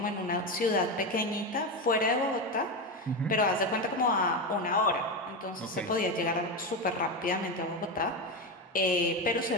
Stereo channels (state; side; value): normal; both; correlation 0.15